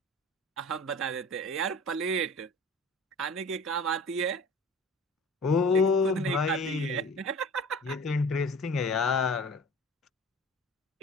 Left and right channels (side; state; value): both; normal; correlation 0.41